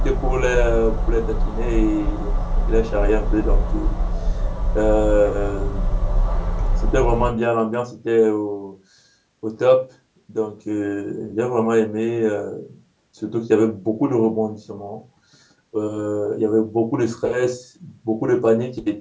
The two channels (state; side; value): identical; both; correlation 1.00